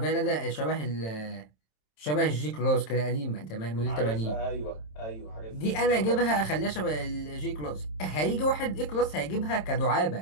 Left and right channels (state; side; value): late; right; 27 ms